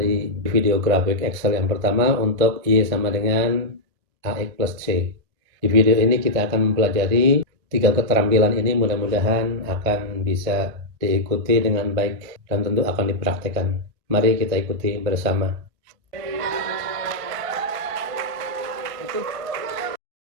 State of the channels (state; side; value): late; left; 1.5 ms